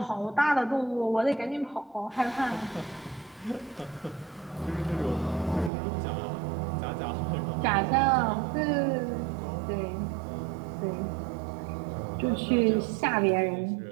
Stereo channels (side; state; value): left; drops out; at 5.7 s